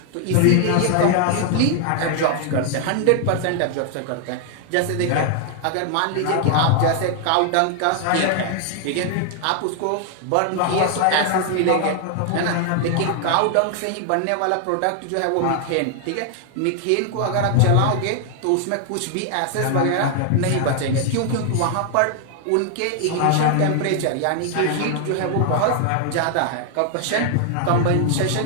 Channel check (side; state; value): both; different; correlation 0.00